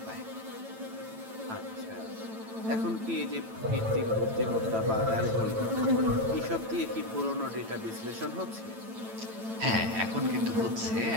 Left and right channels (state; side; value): late; left; 9.0 ms